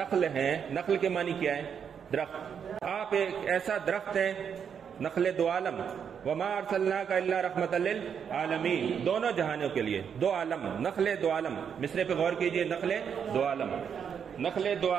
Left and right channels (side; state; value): left; quieter; 7.5 dB